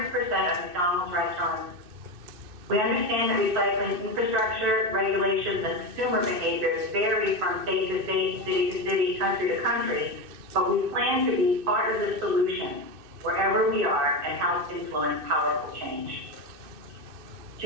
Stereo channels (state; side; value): late; left; 2.6 ms